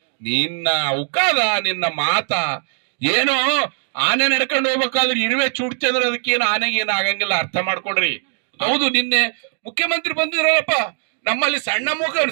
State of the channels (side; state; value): left; silent; digital silence